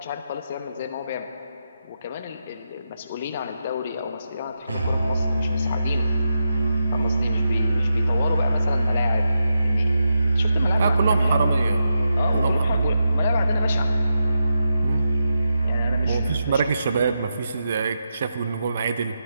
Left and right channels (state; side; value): inverted; both; correlation -0.87